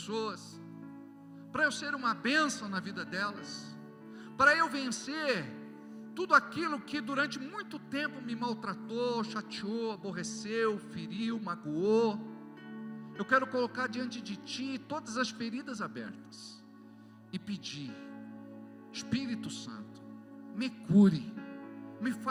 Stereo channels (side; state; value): both; identical; correlation 1.00